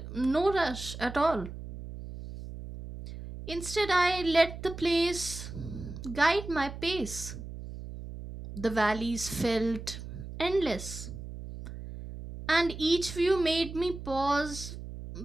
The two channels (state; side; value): noise; right; hum, 10 dB below the sound